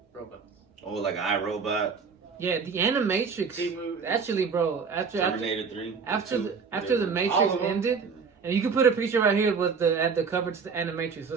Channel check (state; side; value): quieter; left; 5.5 dB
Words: robots. Oh, like iRobot, Yeah, the Animatrix. Actually, bro, Terminator 3, after the All Matrix of them. ended, and you can put a picture right here with the cover to the Animatrix